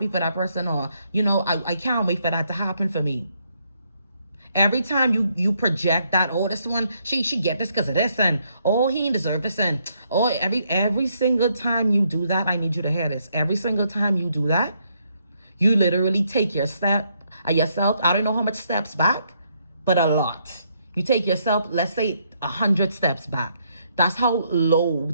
for that person, or I can't wait for that to happen for me. Every time you project that, oh, this one, she get this because of this, and oh, he ain't deserve this, and oh, every single time you do that, I need you to hear this. Every single time you do that, you literally take yourself, I don't know how much steps back, but a lot. You take yourself, let's say 100 steps back. That's how low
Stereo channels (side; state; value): both; inverted; correlation -0.74